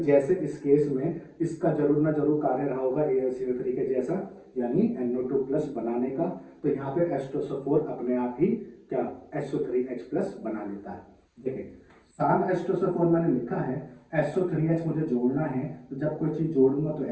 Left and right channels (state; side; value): identical; both; correlation 1.00